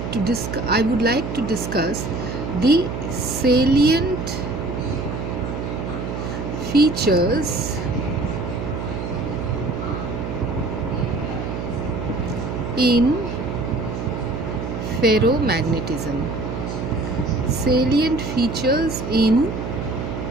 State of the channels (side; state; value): right; noise; hum, 5 dB below the sound